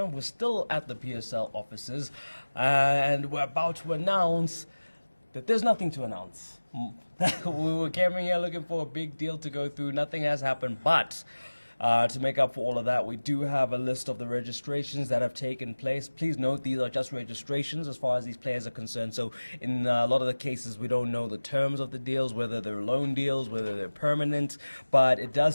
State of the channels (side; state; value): both; inverted; correlation -1.00